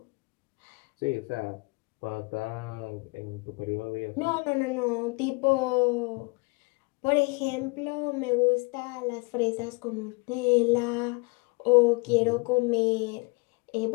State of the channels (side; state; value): right; quieter; 29.1 dB